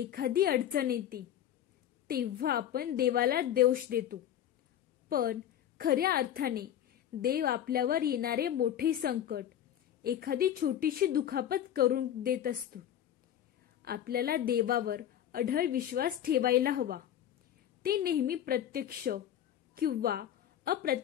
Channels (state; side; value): quieter; right; 10.7 dB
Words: अडचण येते, तेव्हा आपण देवाला दोष देतो. पण खऱ्या अर्थाने देव आपल्यावर येणारे मोठे संकट एखादी छोटीशी दुखापत करून देत असतो. आपल्याला देवावर अढळ विश्वास ठेवायला हवा. ते नेहमी प्रत्यक्ष किंवा